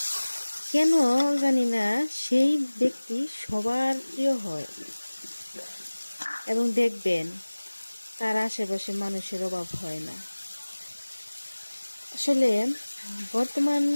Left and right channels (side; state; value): both; inverted; correlation -1.00